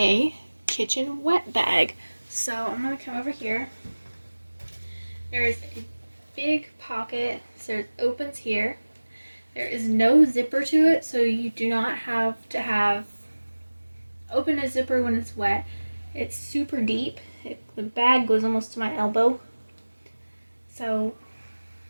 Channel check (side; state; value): both; inverted; correlation -1.00